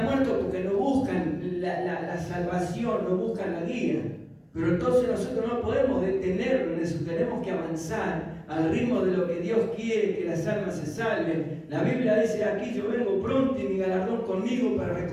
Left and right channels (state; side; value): identical; both; correlation 1.00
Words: muertos porque no buscan la salvación, no buscan la guía. Pero entonces nosotros no podemos detenernos en eso, tenemos que avanzar al ritmo de lo que Dios quiere, que las almas se salven. La Biblia dice aquí, yo vengo pronto y mi galardón conmigo para